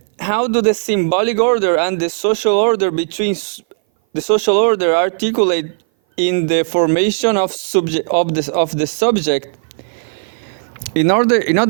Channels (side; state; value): left; silent; 59 dB below the other